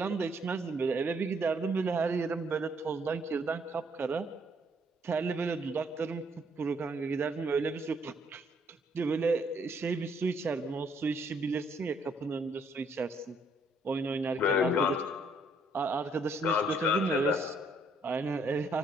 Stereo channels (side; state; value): both; normal; correlation 0.68